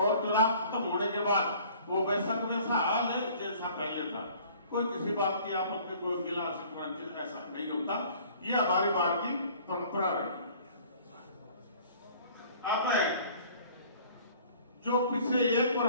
चुनाव खत्म होने के बाद वो वैसा हाल है जैसा पहले था। कोई किसी बात की आपस में कोई गिला शिकवा ऐसा नहीं होता। ये हमारी बार की परंपरा रही। अब जो पिछले 1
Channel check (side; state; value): both; inverted; correlation -0.52